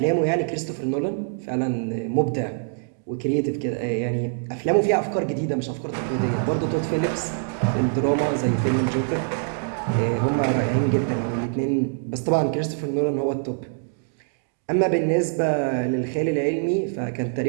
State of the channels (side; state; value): left; silent; digital silence